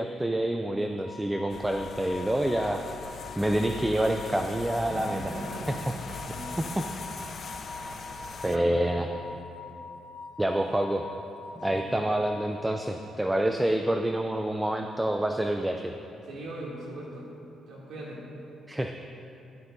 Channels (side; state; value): both; normal; correlation 0.93